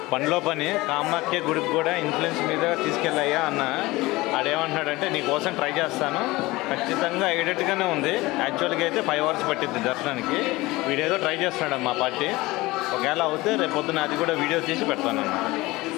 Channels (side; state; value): right; quieter; 20.4 dB